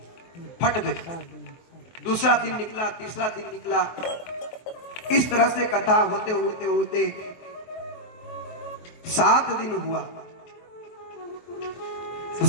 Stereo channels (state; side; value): late; right; 23 ms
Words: फट गई। दूसरा दिन निकला, तीसरा दिन निकला, इस तरह से कथा होते होते होते 7 दिन हुआ। तो